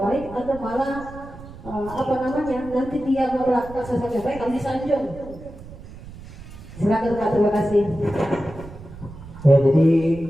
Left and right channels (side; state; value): right; noise; rumble, 16 dB below the sound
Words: atau malah nanti dia melakukan sesuatu yang baik kalau disanjung? Silakan Pak, terima kasih. Ya, jadi